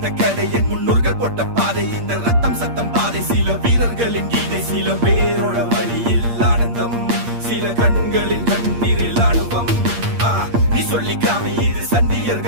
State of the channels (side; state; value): left; late; 8.6 ms